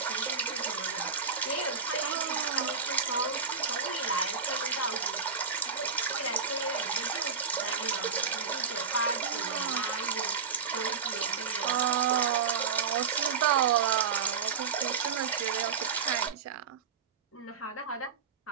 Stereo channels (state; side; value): quieter; left; 5.9 dB